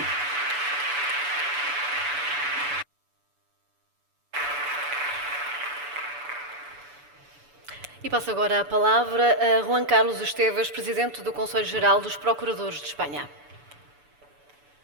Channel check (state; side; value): late; left; 6.9 ms